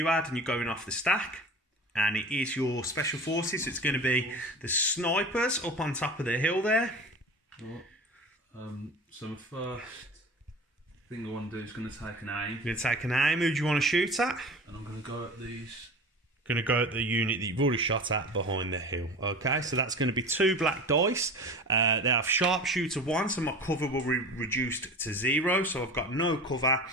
Ad, and you're going off the stack. And it is your special forces. It's going to be the snipers up on top of the hill there. So my first thing I want to do is going to take an aim. You're going to take an aim. Who do you want to shoot at? And I'm going to go at these. Going to go at the unit that you've already shot at behind the hill. Okay, so that's going to be 2 black dice. They have sharpshooter 1, so my cover will be reduced to 0. So I've got no cover,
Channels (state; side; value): normal; both; correlation 0.35